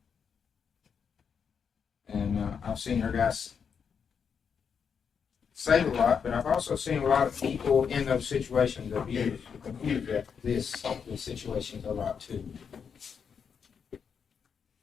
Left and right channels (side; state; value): right; quieter; 6.7 dB